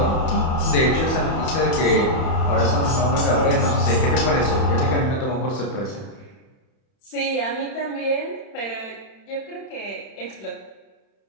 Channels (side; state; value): right; late; 31 ms